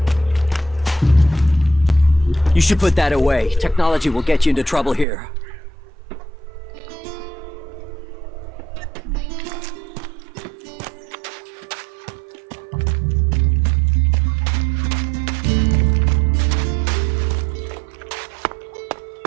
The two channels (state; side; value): drops out; left; at 5.1 s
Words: You should put that away. Technology will get you into trouble here.